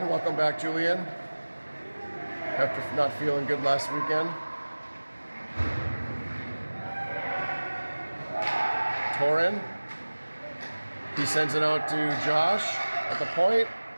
Welcome back, Julian. After not feeling good last weekend. Torin. He sends it out to Josh at the point.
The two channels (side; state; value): both; inverted; correlation -1.00